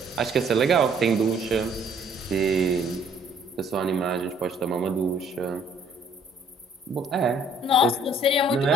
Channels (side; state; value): both; normal; correlation 0.61